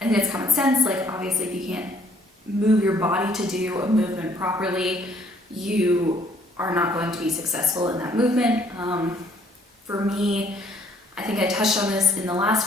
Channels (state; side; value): normal; both; correlation 0.63